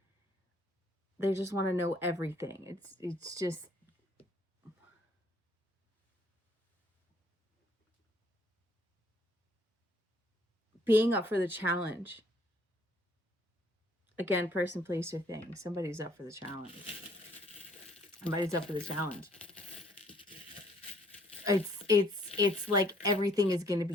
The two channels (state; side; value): normal; both; correlation 0.62